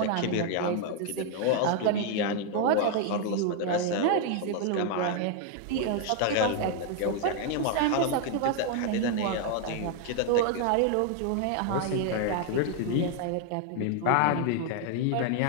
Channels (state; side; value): different; both; correlation 0.00